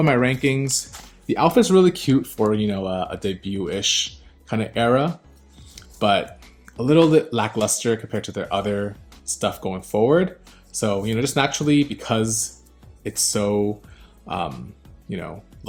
my rankings. The outfit's really cute for, a debut-ish kind of era, but a little bit lackluster compared to their other stuff going forward. So, just naturally because it's so,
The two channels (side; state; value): both; identical; correlation 1.00